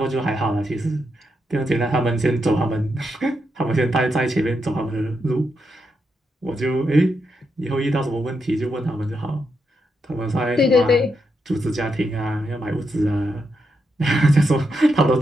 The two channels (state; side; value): normal; both; correlation 0.83